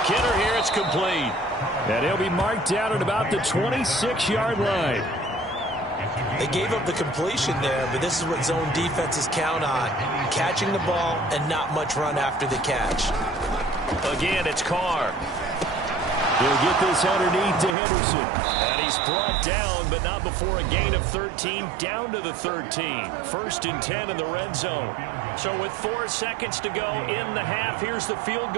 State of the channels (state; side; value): drops out; left; at 17.8 s